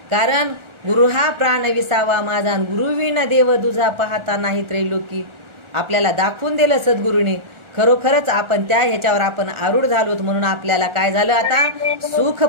कारण गुरु हा प्राण विसावा माझा, आणि गुरुविन देव दुजा पाहता नाही त्रैलोकी. आपल्याला दाखवून दिलं सद्गुरूंनी. खरोखरच आपण त्या ह्याच्यावर आपण आरूढ झालोत. म्हणून आपल्याला काय झालं? आता सुख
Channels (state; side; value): late; left; 1.4 ms